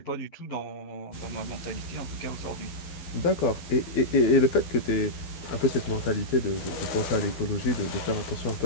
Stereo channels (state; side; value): late; right; 12 ms